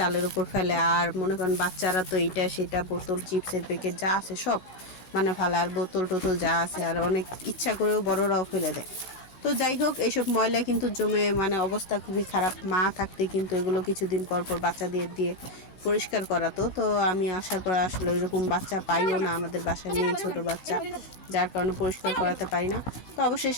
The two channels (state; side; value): late; right; 16 ms